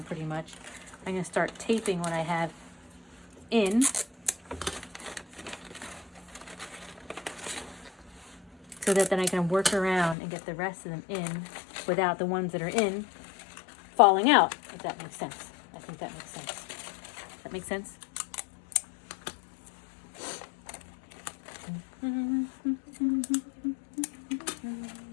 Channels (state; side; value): drops out; right; at 10.2 s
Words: pretty much. I'm going to start taping what I have in. So that then I can work around and get the rest of them in without the ones that are in falling out, if that makes sense. I think that makes sense. That makes sense?